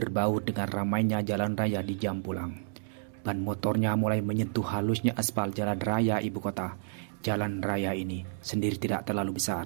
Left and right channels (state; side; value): silent; left; digital silence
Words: dengan ramainya jalan raya di jam pulang. Ban motornya mulai menyentuh halusnya aspal jalan raya ibu kota. Jalan raya ini sendiri tidak terlalu